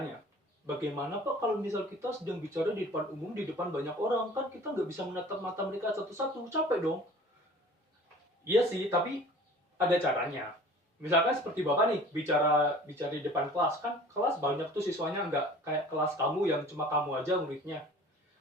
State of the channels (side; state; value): both; normal; correlation 0.46